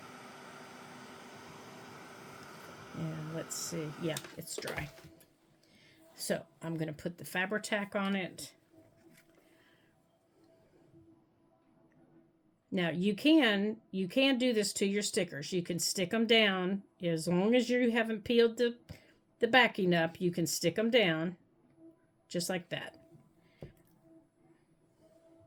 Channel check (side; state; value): both; identical; correlation 1.00